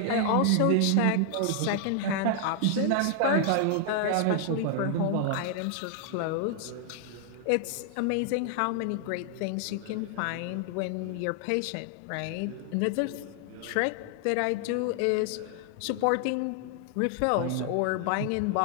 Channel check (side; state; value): both; different; correlation 0.00